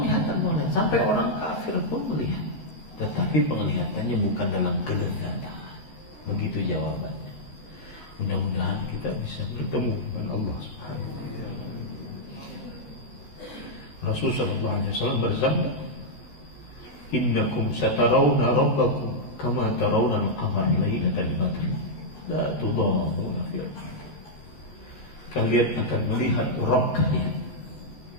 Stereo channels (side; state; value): right; late; 13 ms